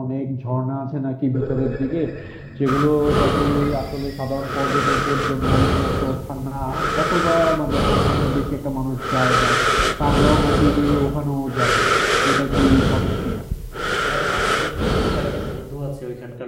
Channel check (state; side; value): identical; both; correlation 1.00